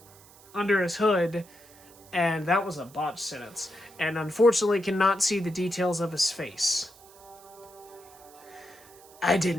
under his hood, And that was a botched sentence. And unfortunately cannot see the details of his face. I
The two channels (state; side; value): noise; right; hiss, 24 dB below the sound